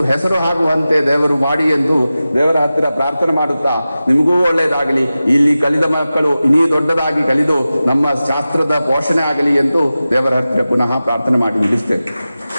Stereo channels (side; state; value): both; inverted; correlation -0.95